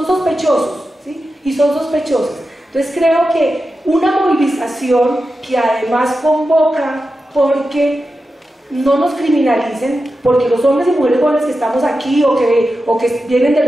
sospechosos, ¿sí? Y son sospechosos. Entonces creo que una movilización que además convoca, porque no nos criminalicen, porque los hombres y mujeres jóvenes que estamos aquí o que vienen de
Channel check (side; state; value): both; normal; correlation 0.91